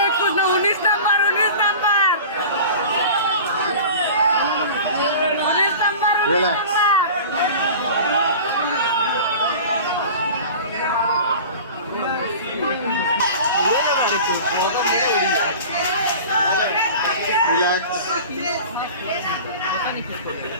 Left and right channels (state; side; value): inverted; both; correlation -0.37